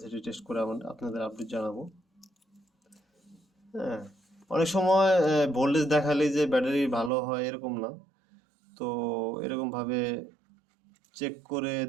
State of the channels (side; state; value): left; drops out; at 7.1 s